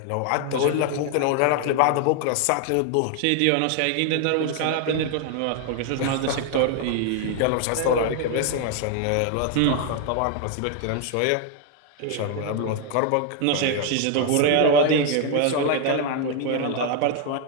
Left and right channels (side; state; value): both; different; correlation 0.01